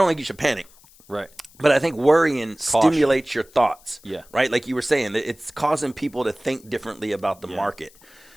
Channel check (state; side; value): noise; left; hiss, 27 dB below the sound